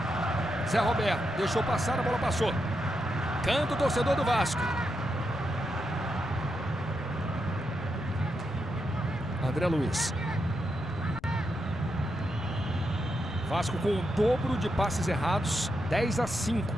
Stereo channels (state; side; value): noise; left; rumble, 22 dB below the sound